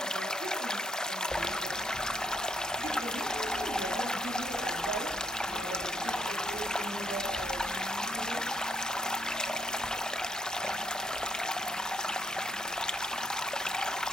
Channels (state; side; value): normal; both; correlation 0.72